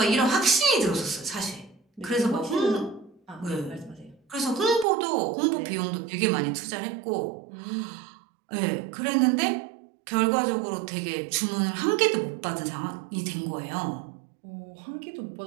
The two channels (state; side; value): drops out; left; at 4.9 s